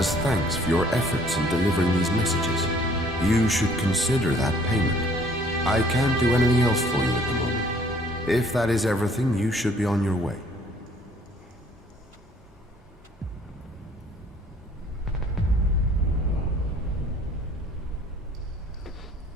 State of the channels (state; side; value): normal; both; correlation 0.58